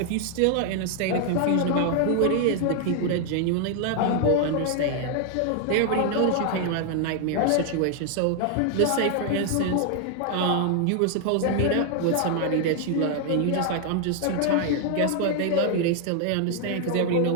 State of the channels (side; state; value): both; different; correlation 0.00